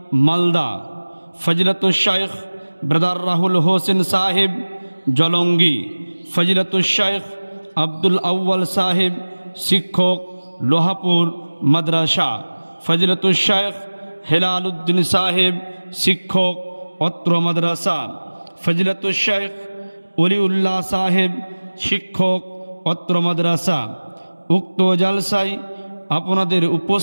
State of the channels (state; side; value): inverted; both; correlation -1.00